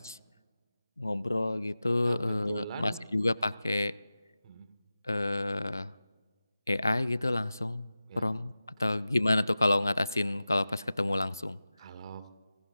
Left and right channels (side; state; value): both; inverted; correlation -0.95